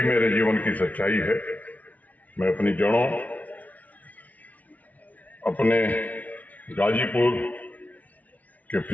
मेरे जीवन की सच्चाई है। मैं अपनी जड़ों, अपने गाजीपुर के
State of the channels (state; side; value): late; right; 0.073 ms